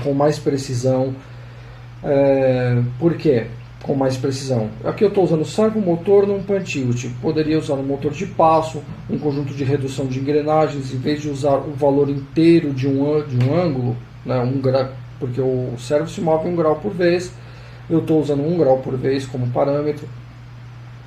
com mais precisão. Por quê? Com mais precisão. Aqui eu estou usando servomotor num pan-tilt. Poderia usar um motor de passo, um conjunto de redução de engrenagens, em vez de usar o valor inteiro de um ângulo, né, porque o servo se move 1 grau por vez, eu estou usando 1 grau por vez como parâmetro.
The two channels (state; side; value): identical; both; correlation 1.00